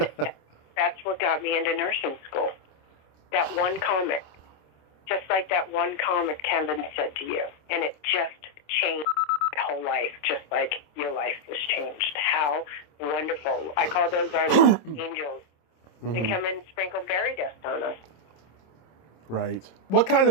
that's what got me into nursing school. That one comment. Just like that one comment Kevin said to you. And it just changed my whole life, just like your life was changed. How wonderful. I call those our angels. They come and sprinkle fairy dust on us. Right. What kind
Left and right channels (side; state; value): right; late; 26 ms